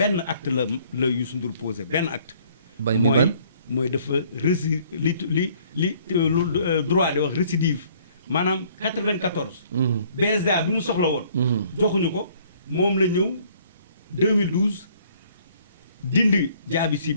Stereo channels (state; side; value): inverted; both; correlation -0.60